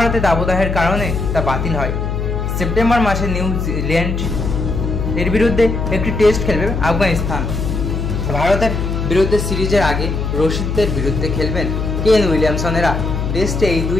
দাবদাহের কারণে তা বাতিল হয়। সেপ্টেম্বর মাসে নিউজিল্যান্ড এর বিরুদ্ধে একটি টেস্ট খেলবে আফগানিস্তান। ভারতের বিরুদ্ধে সিরিজের আগে রশিদদের বিরুদ্ধে খেলবেন কেন উইলিয়ামসনেরা। টেস্টে এই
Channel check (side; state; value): left; noise; hum, 2 dB below the sound